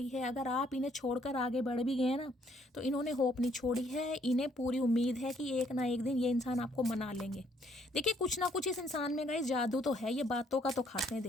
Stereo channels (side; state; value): both; normal; correlation 0.67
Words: है। अगर आप इन्हें छोड़कर आगे बढ़ भी गए ना तो इन्होंने होप नहीं छोड़ी है, इन्हें पूरी उम्मीद है कि एक ना एक दिन ये इंसान आपको मना लेंगे। देखिए कुछ ना कुछ इस इंसान में गाइस जादू तो है, ये बातों का तो खाते हैं,